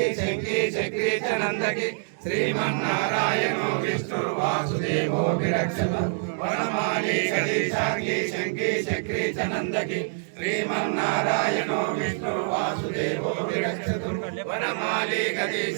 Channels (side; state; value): left; silent; digital silence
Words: शंकी चक्री च नंदकी श्रीमन्नारायणो विष्णुर्वासुदेवो विरक्षतु। वनमाली गणेशांगी शंकी चक्री च नंदकी श्रीमन्नारायणो विष्णुर्वासुदेवो विरक्षतु। वनमाली